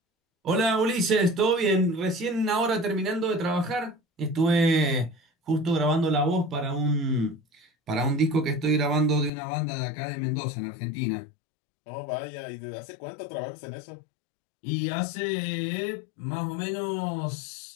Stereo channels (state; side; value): drops out; right; at 9.3 s